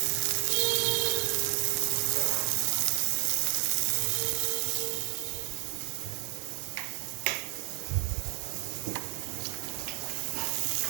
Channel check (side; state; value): left; quieter; 35.7 dB